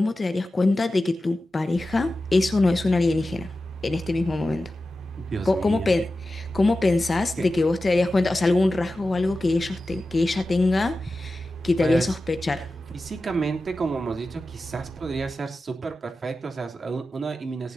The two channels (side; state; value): both; normal; correlation 0.93